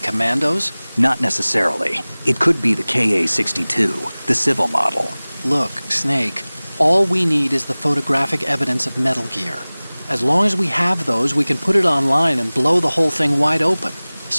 Not necessarily. It could be the Ka-62, the civil model. Look, Snake, all we need is the photographic evidence of Metal Gear. As long as we have those, we can put it online and blow the whole thing wide open.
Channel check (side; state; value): both; inverted; correlation -0.99